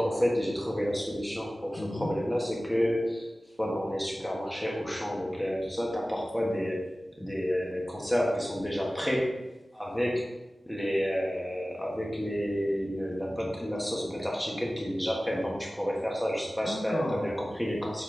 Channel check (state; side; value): normal; both; correlation 0.97